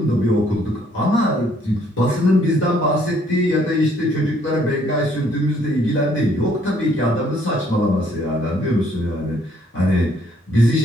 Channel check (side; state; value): both; normal; correlation 0.64